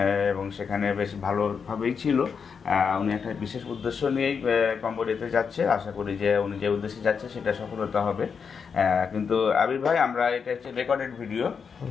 এবং সেখানে বেশ ভালোভাবেই ছিল। উনি একটা বিশেষ উদ্দেশ্য নিয়েই কম্বোডিয়াতে যাচ্ছে। আশা করি যে উনি যে উদ্দেশ্যে যাচ্ছে সেটা সফলতা হবে। কিন্তু আবির ভাই, আমরা এটা হচ্ছে রেকর্ডেড ভিডিও,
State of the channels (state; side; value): quieter; right; 6.1 dB